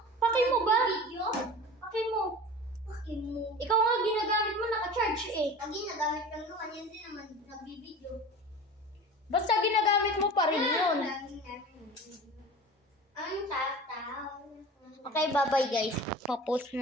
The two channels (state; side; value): normal; both; correlation 0.36